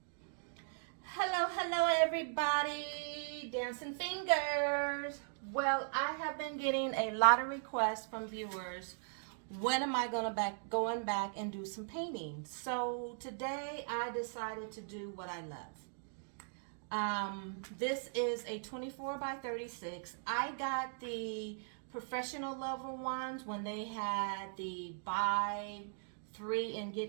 Hello, everybody. Dancing fingers. Well, I have been getting a lot of requests from viewers. When am I going back and do some painting? So today I decided to do what I love. This is a 24 by 36. I got the professional level ones when they had the buy 3 and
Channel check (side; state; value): left; silent; digital silence